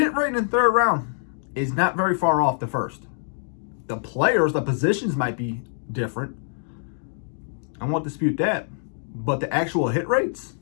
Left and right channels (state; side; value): silent; right; digital silence